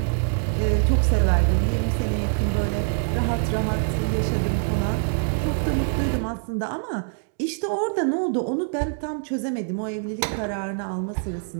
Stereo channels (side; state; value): left; silent; 62 dB below the other